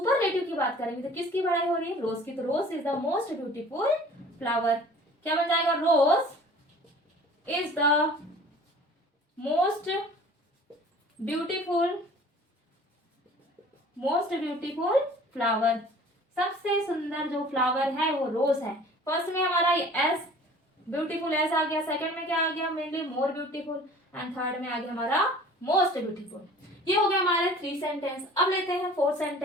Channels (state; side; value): normal; both; correlation 0.47